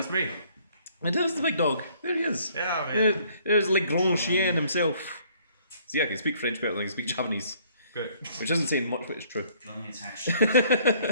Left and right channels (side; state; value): both; inverted; correlation -0.61